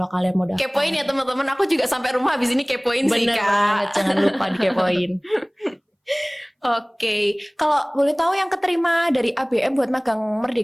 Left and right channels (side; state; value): both; identical; correlation 1.00